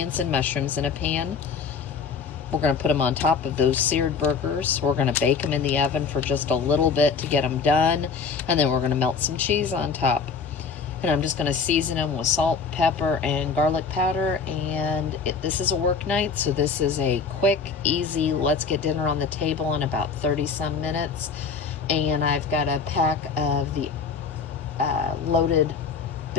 and mushrooms in a pan. We're gonna put them on top of those seared burgers. We're gonna bake them in the oven for just a little bit to get them done. And then we're gonna melt some cheese on top. And I'm just gonna season them with salt, pepper, and garlic powder. And this is a work night, so this is a quick, easy, let's get dinner on the table in about 30 some minutes. And I've got a pack of the loaded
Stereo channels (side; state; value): right; quieter; 5.3 dB